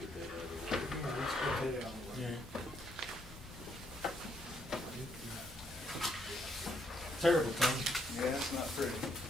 Get that out of the way. Yeah, let's get that out of the way. Terrible thing. Yeah, it's not pretty.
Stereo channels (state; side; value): normal; both; correlation 0.73